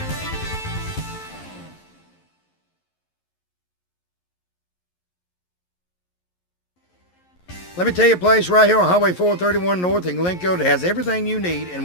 Let me tell you a place right here on Highway 431 North in Glencoe that has everything you need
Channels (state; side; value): late; right; 11 ms